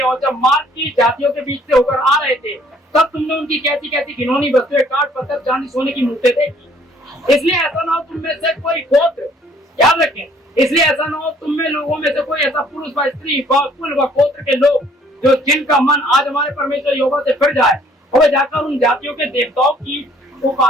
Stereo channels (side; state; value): both; normal; correlation 0.60